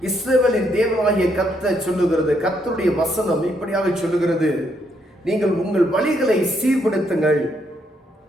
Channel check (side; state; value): both; normal; correlation 0.75